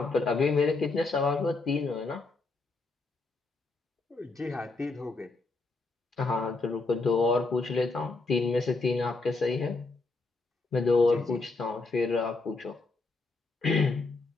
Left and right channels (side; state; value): right; quieter; 3.6 dB